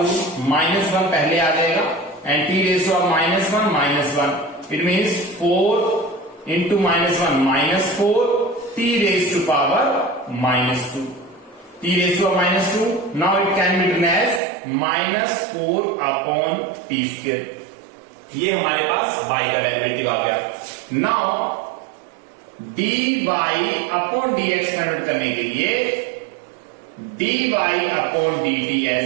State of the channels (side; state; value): left; drops out; at 14.4 s